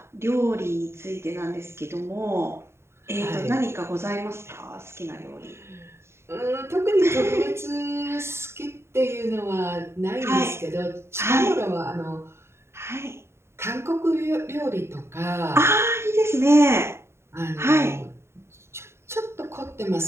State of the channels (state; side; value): late; left; 0.12 ms